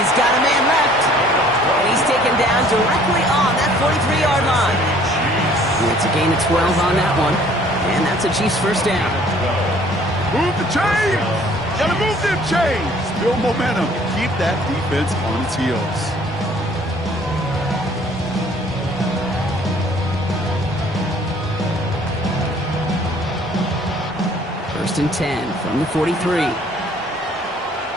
got a man left. And he's taken down directly on that 43-yard line. And it's a gain of 12 on that one. And that's a Chiefs first down. Move the chains! Gotta move them chains! Build momentum. Keep that defense on its heels. First and 10 from the 43.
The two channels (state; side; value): normal; both; correlation 0.56